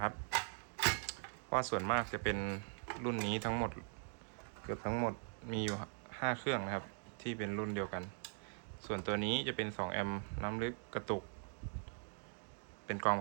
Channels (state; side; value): silent; left; 50 dB below the other